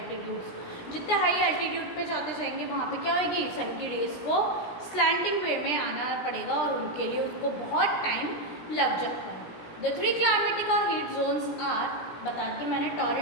जितने high altitude पे जाते जाएंगे वहाँ पे क्या होगी, सन की रेस को स्लैंटिंग वे में आना पड़ेगा और उनके लिए उसको बहुत टाइम लग जाता है। द 3 क्लाइमेटिक और हीट जोन्स आर, बता के मैंने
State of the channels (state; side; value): late; right; 17 ms